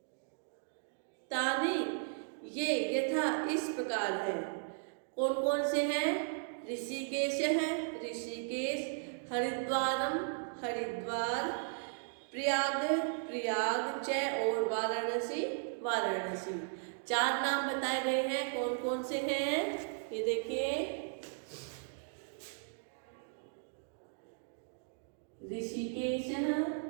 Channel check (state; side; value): silent; left; digital silence